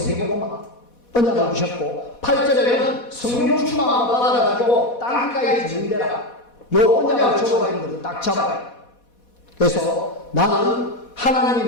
언약을 주셨고 8절에는 성령 충만함을 받아가지고 땅까지 진행되라. 요 언약을 적어가는 것을 딱 잡아요. 그래서 나는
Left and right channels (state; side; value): late; right; 4.1 ms